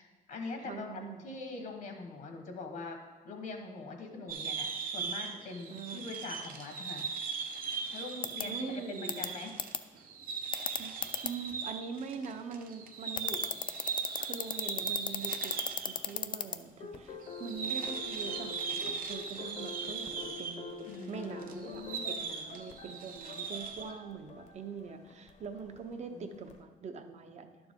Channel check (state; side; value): normal; both; correlation -0.02